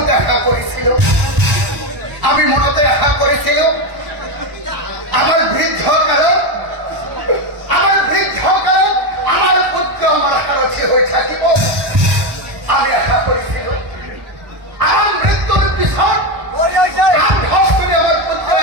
আশা করেছিল। আমি মনতে আশা করেছিল আমার বৃদ্ধ কালত আমার পুত্র আমার সারথী হয়ে থাকিব। আমি আশা করেছিল আমার মৃত্যুর পিছত আমার পুত্র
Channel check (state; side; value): late; left; 1.0 ms